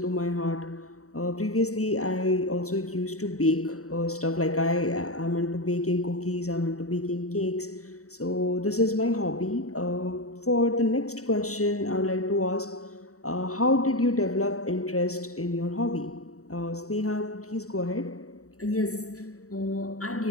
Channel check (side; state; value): right; late; 0.65 ms